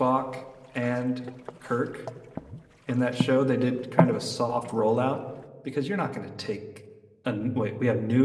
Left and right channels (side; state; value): both; identical; correlation 1.00